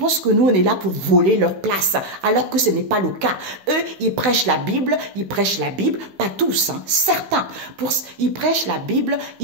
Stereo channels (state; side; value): late; left; 15 ms